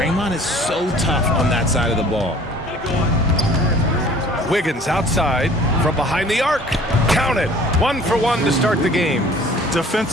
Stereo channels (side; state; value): both; normal; correlation 0.51